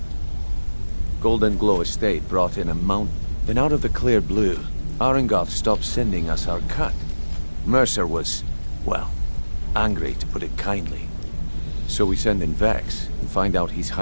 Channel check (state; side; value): inverted; both; correlation -1.00